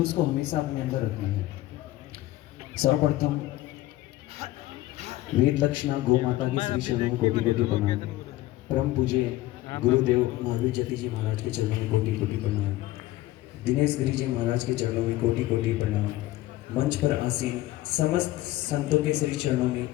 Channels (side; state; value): right; quieter; 16.5 dB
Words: को हमेशा अपने अंदर रखना है। सर्वप्रथम वेद लक्षणा गौ माता की श्री चरणों में कोटि कोटि प्रणाम। परम पूज्य गुरुदेव महावीर जति जी महाराज के चरणों में कोटि कोटि प्रणाम। दिनेश गिरी जी महाराज के चरणों में कोटि कोटि प्रणाम। मंच पर आसीन समस्त संतों के श्री चरणों में